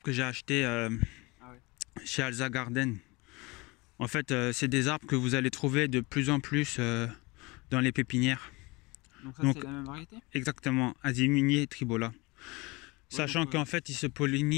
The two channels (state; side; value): quieter; right; 24.9 dB